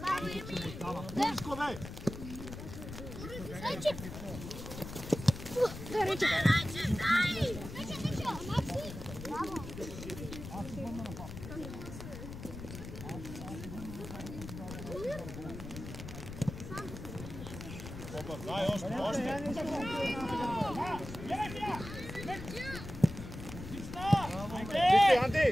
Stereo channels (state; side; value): noise; left; rumble, 10 dB below the sound